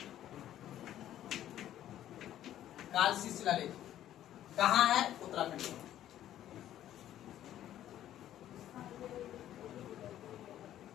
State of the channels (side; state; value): right; quieter; 12.1 dB